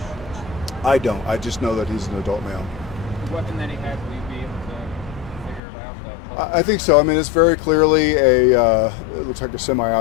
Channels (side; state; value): right; drops out; at 5.6 s